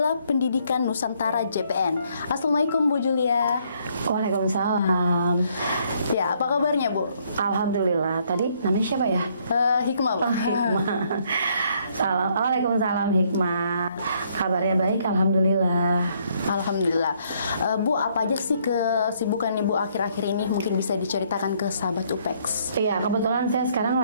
Pendidikan Nusantara JPN. Assalamualaikum Bu Julia. Waalaikumsalam. Ya, apa kabarnya Bu? Alhamdulillah. Tadi namanya siapa ya? Hikmah Bu. Hikmah. Waalaikumsalam Hikmah. Kabarnya baik, alhamdulillah. Alhamdulillah. Bu, apa aja sih kesibukan Ibu akhir-akhir ini? Mungkin bisa diceritakan ke sahabat Upex. Iya, kebetulan saya sekarang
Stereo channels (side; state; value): both; inverted; correlation -0.68